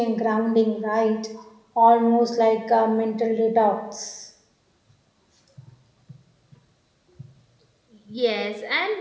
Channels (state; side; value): identical; both; correlation 1.00